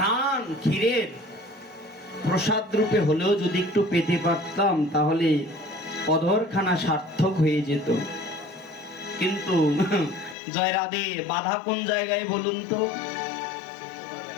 ক্ষীরের, প্রসাদ রূপে হলেও যদি একটু পেতে পারতাম তাহলে অধরখানা সার্থক হয়ে যেত। কিন্তু জয় রাধে, বাধা কোন জায়গায় বলুন তো?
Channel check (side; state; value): right; drops out; at 10.4 s